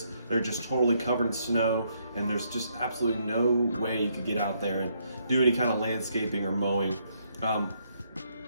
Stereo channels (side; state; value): both; inverted; correlation -0.74